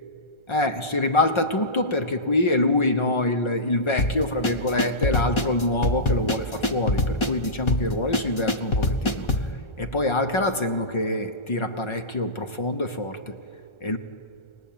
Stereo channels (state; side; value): late; right; 1.3 ms